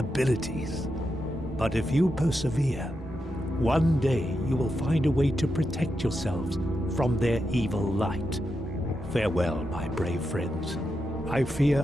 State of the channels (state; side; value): noise; left; rumble, 25 dB below the sound